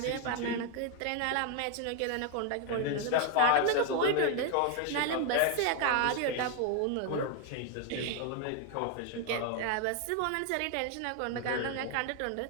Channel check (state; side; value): different; both; correlation 0.01